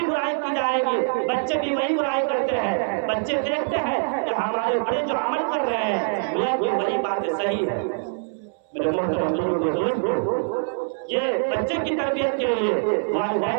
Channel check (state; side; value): silent; left; 63 dB below the other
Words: برائی کی جائے گی بچے بھی وہی برائی کرتے ہیں۔ بچے دیکھتے ہیں کہ ہمارے بڑے جو عمل کر رہے ہیں یہ وہی باتیں صحیح ہے۔ میرے محترم دوستو، یہ بچے کی تربیت کے لیے